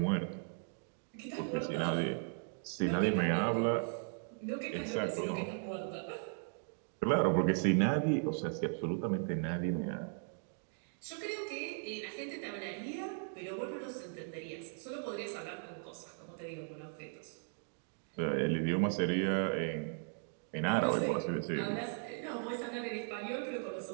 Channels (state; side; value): silent; left; 53 dB below the other